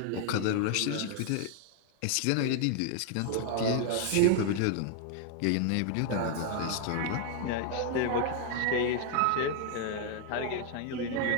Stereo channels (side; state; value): both; different; correlation 0.00